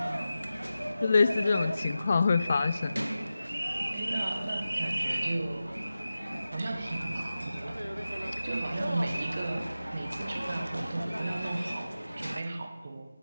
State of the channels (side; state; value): both; inverted; correlation -0.94